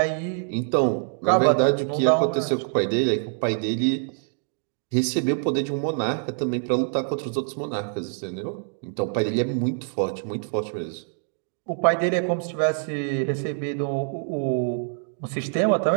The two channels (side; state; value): left; silent; digital silence